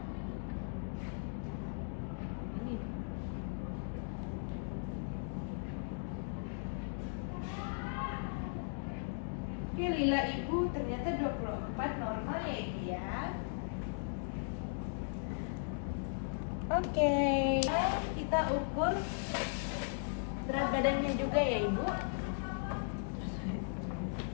Oke, lila ibu ternyata 24 normal ya ibu ya. Oke, kita ukur berat badannya juga ya ibu.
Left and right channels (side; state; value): right; silent; digital silence